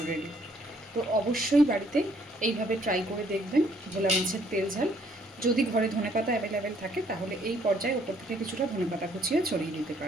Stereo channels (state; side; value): normal; both; correlation 0.65